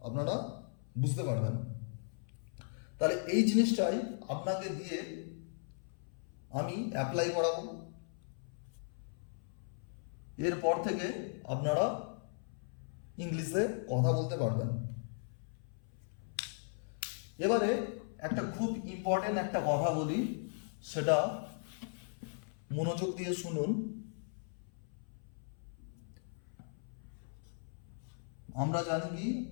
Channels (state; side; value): silent; right; 53 dB below the other